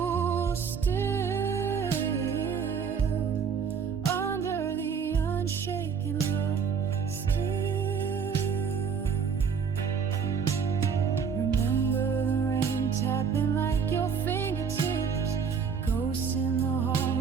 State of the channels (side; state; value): left; quieter; 6.4 dB